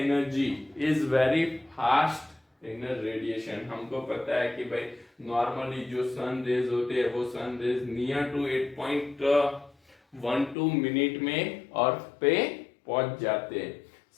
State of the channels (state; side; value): drops out; right; at 10.6 s